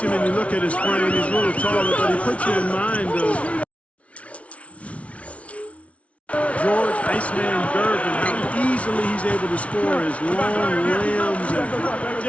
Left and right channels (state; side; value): late; right; 0.064 ms